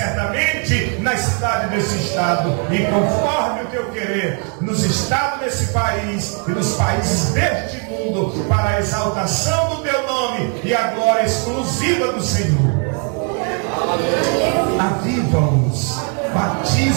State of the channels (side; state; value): left; quieter; 40.0 dB